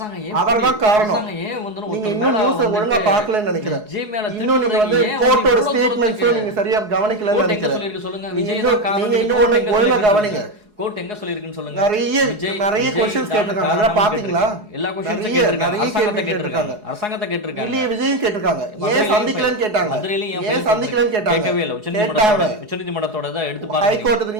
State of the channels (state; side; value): late; left; 4.7 ms